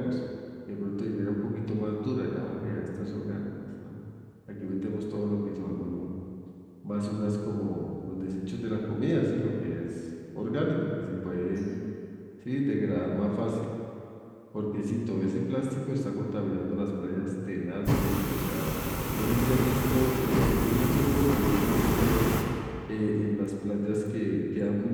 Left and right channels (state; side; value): identical; both; correlation 1.00